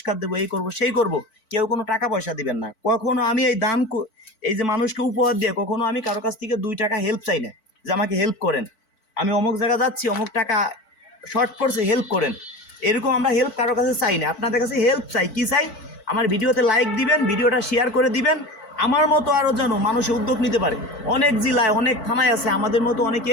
দেবো, এই করবো সেই করবো, কেউ কোনো টাকা পয়সা দিবেন না। কখনো আমি এই দান, এই যে মানুষকে উপহার দিয়ে কখনো আমি কারো কাছ থেকে 2 টাকা হেল্প চাই না, যে আমাকে হেল্প করেন, আমি অমুক জায়গা যাচ্ছি, অমুক টাকা শর্ট পড়ছে, হেল্প করেন, এরকম আমরা হেল্প কারো কাছে চাই না। আপনাদের কাছে হেল্প চাই, কি চাই? আমার ভিডিওতে লাইক দিবেন, ভিডিওটা শেয়ার করে দিবেন, আমার মতো আরও যেন মানুষে উদ্যোগ নিতে পারে। অনেক জেলায়, অনেক থানায় আছে আমাদের মতো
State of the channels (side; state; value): right; late; 4.5 ms